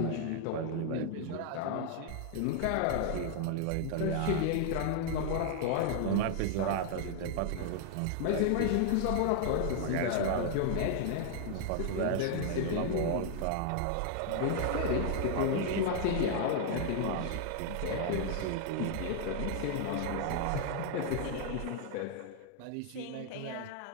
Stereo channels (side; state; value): both; different; correlation 0.00